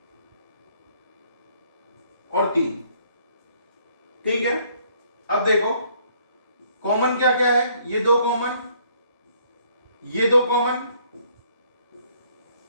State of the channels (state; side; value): inverted; both; correlation -0.64